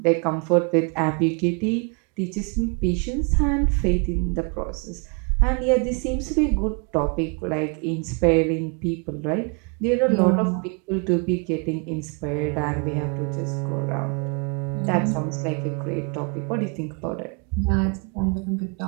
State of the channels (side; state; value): left; quieter; 35.2 dB